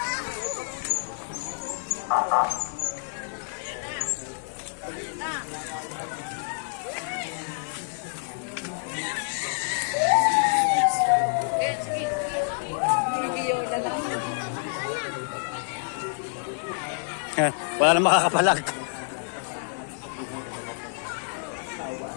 Wala nang makakapalag.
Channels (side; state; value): right; silent; 60 dB below the other